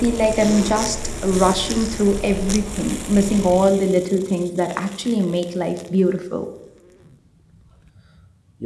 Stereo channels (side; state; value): both; identical; correlation 1.00